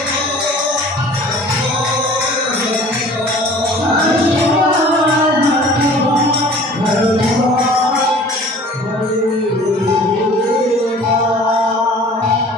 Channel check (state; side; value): normal; both; correlation 0.47